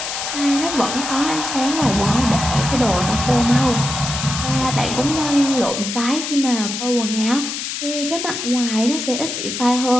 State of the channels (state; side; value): noise; left; hiss, 5 dB below the sound